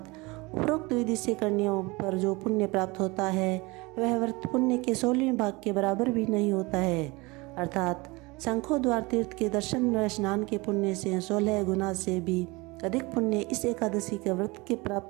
उपरोक्त विधि से करने पर जो पुण्य प्राप्त होता है, वह व्रत पुण्य के 16वें भाग के बराबर भी नहीं होता है। अर्थात शंखोद्वार तीर्थ के दर्शन व स्नान के पुण्य से 16 गुना से भी अधिक पुण्य इस एकादशी के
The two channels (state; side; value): quieter; left; 24.4 dB